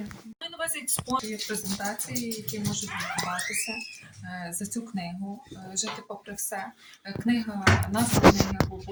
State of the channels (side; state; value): both; identical; correlation 1.00